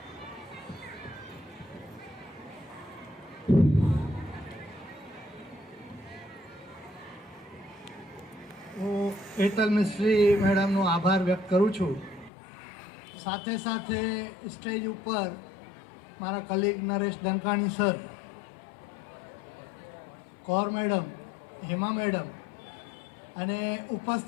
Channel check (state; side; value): drops out; right; at 12.3 s